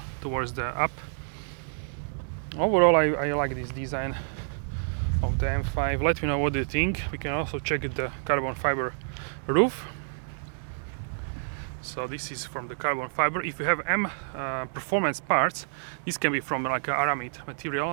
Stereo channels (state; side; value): silent; left; digital silence